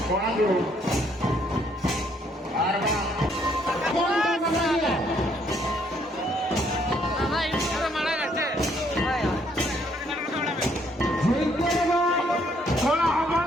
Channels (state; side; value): normal; both; correlation 0.68